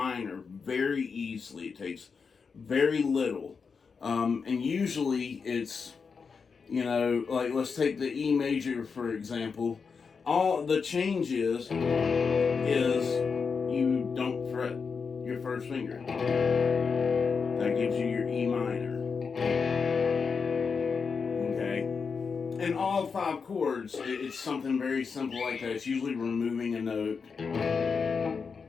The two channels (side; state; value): right; quieter; 5.5 dB